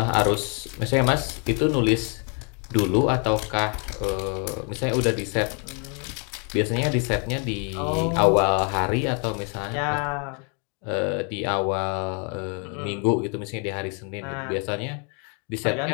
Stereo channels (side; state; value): right; quieter; 38.2 dB